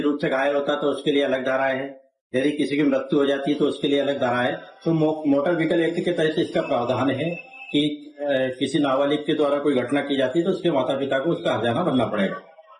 रूप से घायल होता है तो उसके लिए अलग धाराएं हैं। यदि किसी की मृत्यु हो जाती है तो उसके लिए अलग धारा है। तो मोटर व्हीकल एक्ट के तहत इसका प्रावधान है कि किसी नाबालिग के द्वारा कोई घटना की जाती है तो उसके माता पिता को उसका हर्जाना भरना पड़ेगा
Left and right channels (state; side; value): identical; both; correlation 1.00